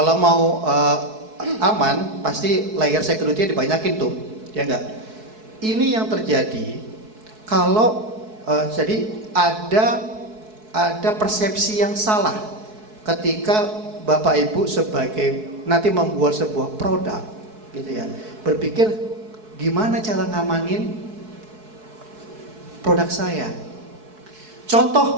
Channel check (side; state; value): left; late; 4.6 ms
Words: mau aman, pasti layer security dibanyakin tuh, ya enggak? Ini yang terjadi kalau jadi ada persepsi yang salah ketika Bapak Ibu sebagai nanti membuat sebuah produk, gitu ya, berpikir gimana cara ngamanin produk saya.